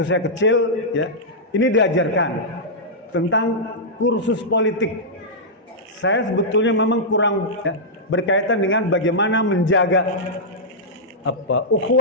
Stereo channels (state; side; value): normal; both; correlation -0.10